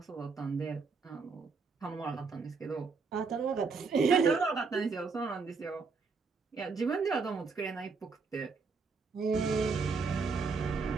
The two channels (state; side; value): quieter; left; 4.7 dB